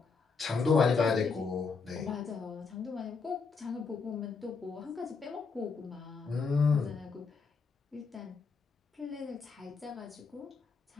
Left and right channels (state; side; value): quieter; right; 4.9 dB